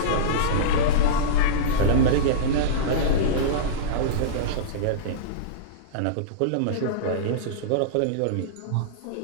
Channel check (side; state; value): both; different; correlation -0.05